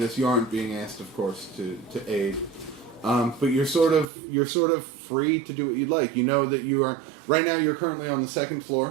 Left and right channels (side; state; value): left; drops out; at 4.0 s